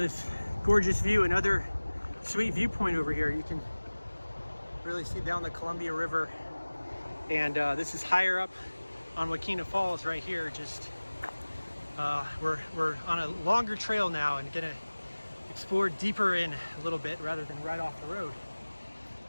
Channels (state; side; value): inverted; both; correlation -1.00